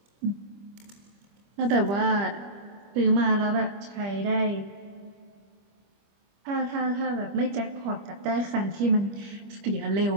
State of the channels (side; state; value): left; late; 25 ms